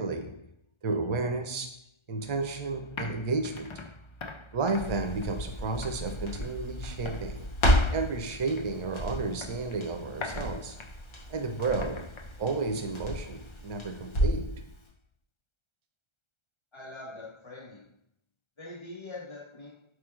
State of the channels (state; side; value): late; right; 1.3 ms